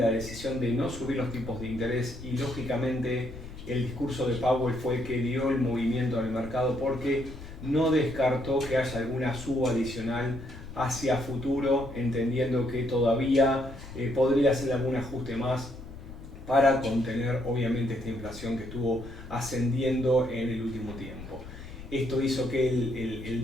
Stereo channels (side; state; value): left; noise; rumble, 13 dB below the sound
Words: decisión de no subir los tipos de interés y lógicamente el discurso de Powell fue el que dio el movimiento en el mercado porque no descartó que haya alguna suba adicional hacia futuro, entendiendo que todavía podría hacer algún ajuste más para contener obviamente esta inflación que estuvo ascendiendo en el último tiempo. Esto hizo que el